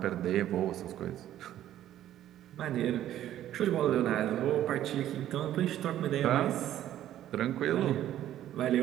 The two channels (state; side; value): quieter; left; 12.2 dB